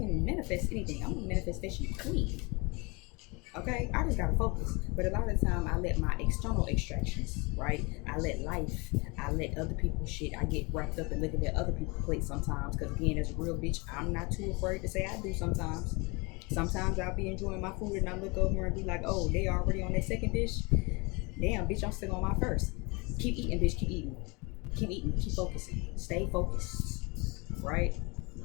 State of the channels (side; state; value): right; quieter; 27.9 dB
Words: manifest anything. I'm a manifestation queen. Okay, I just gotta focus. But a lot of the time, I let my external extractions, right? I let life, I let other people's shit. I get wrapped up in looking at other people's plates sometimes. Because again, as a real bitch, I'm not too afraid to say I do sometimes. Sometimes I'll be enjoying my food and I look over and be like, oh, they already on their second dish. Damn, bitch, I'm still on my first. Keep eating, bitch, keep eating. Keep eating, keep focusing. Stay focused, right?